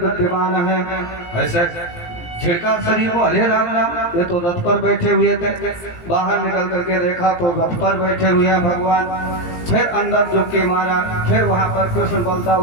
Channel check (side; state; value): right; late; 17 ms